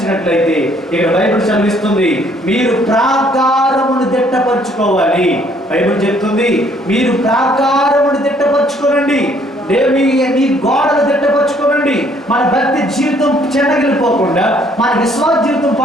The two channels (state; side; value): normal; both; correlation 0.63